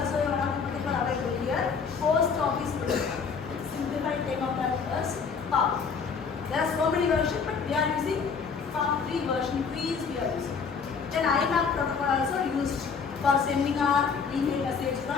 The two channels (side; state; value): right; quieter; 5.7 dB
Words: one of the protocol available here. Post office protocol. Simplified name of that is POP. There are so many versions, but we are using POP 3 version 3 is we are using. Then IMAP protocol also used for sending our email message